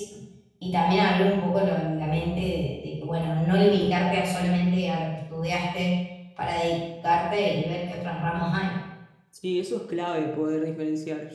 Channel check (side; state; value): both; identical; correlation 1.00